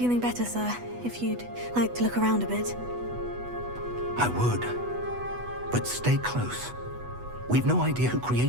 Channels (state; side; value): late; left; 8.1 ms